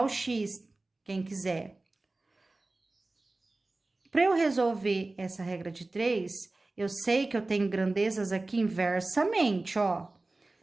X, quem quiser. Para eu resolver essa regra de 3, eu sei que eu tenho grandezas aqui inversamente, ó.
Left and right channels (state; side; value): quieter; left; 3.1 dB